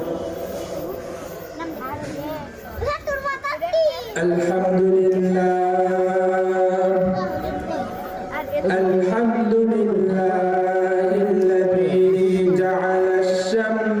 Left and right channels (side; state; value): both; identical; correlation 1.00